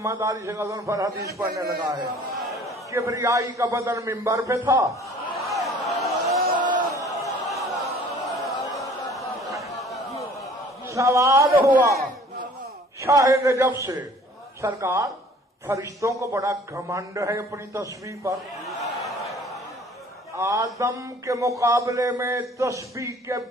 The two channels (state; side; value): normal; both; correlation 0.52